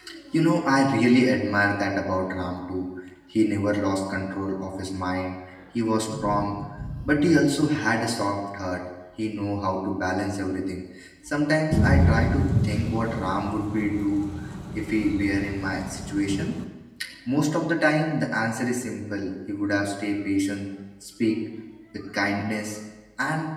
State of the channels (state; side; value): identical; both; correlation 1.00